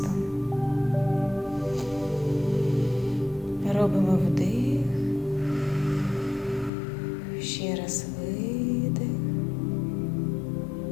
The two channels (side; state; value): right; drops out; at 6.7 s